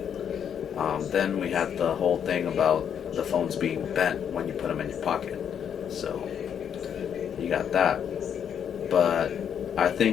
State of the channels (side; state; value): right; quieter; 8.4 dB